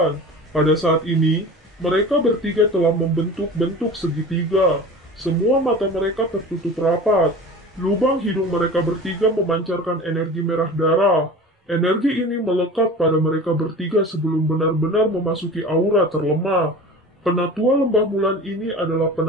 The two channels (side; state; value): both; normal; correlation 0.36